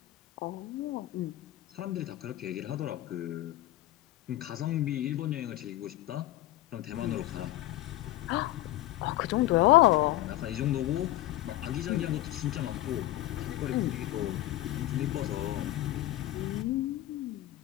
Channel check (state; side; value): quieter; right; 15.5 dB